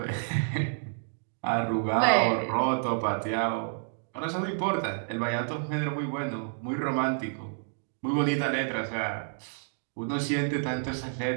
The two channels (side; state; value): left; silent; digital silence